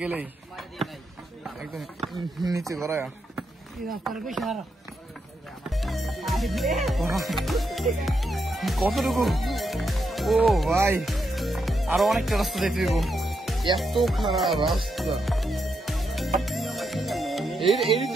গেলেই একদম নিচে গড়ায়। কতটুকু, ও ভাই আরো অনেকটা রাস্তা যেতে দিব। এত খারাপ রাস্তা।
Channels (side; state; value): both; normal; correlation 0.82